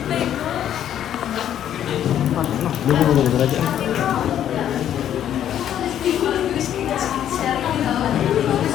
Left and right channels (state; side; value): quieter; right; 10.5 dB